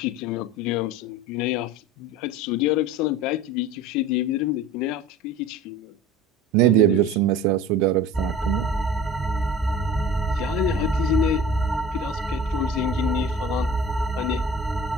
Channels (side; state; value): both; normal; correlation 0.40